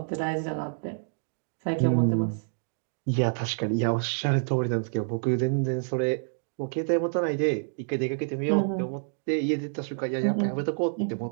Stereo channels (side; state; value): left; silent; digital silence